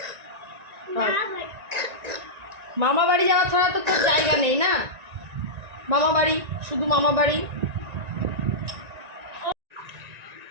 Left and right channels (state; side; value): late; left; 1.9 ms